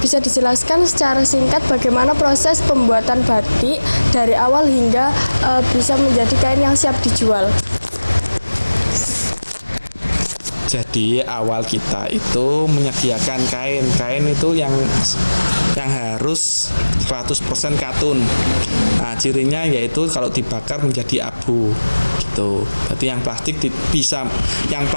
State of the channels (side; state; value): both; inverted; correlation -1.00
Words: dijelaskan secara singkat bagaimana proses pembuatan batik dari awal hingga bisa menjadi kain yang siap dijual? Jadi awal kita itu menyediakan kain itu yang yang harus 100% katun. Nah, cirinya yaitu kalau dibakar menjadi abu gitu. Berarti yang plastik